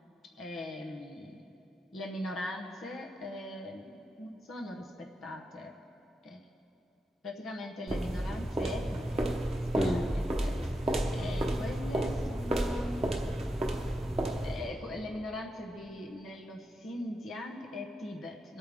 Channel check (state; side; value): normal; both; correlation 0.86